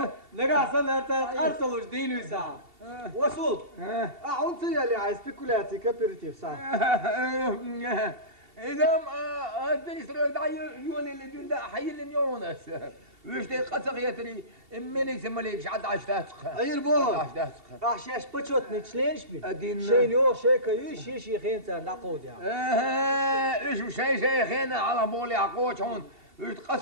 لقى صلت أرسلوا جدين وساعة وصول أعنصي اللي عايز سبيكولاتي كابيرتيف صح إذا أدري دعي يولي اللي دون ده حي اللي يونس وش تي قصق يتري مني سماليك عاد عشتاتك أي البو عشاش بتشوتني تشلينش بي أدين شينيو شيكا يش خينتا نعقود يعني إيش شيخين على بولي عقوش هون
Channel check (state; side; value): late; left; 2.7 ms